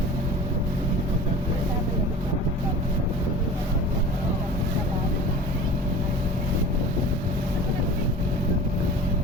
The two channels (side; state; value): both; normal; correlation 0.39